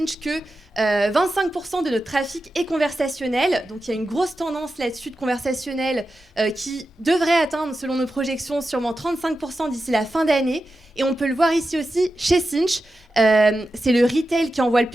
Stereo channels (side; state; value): both; normal; correlation 0.91